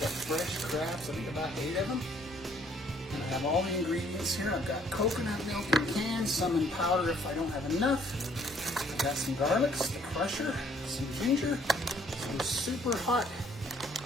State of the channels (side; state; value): both; normal; correlation 0.63